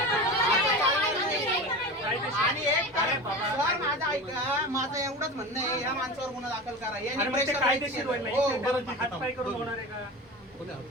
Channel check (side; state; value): both; normal; correlation 0.29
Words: आणि एक सर माझं ऐका माझं एवढंच म्हणणं आहे या माणसावर गुन्हा दाखल करा यांनी प्रेशर कायदेशीर हो हात पाय करून होणार आहे का